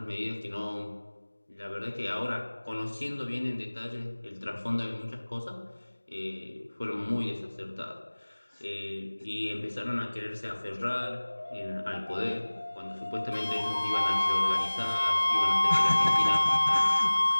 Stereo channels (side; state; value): both; inverted; correlation -1.00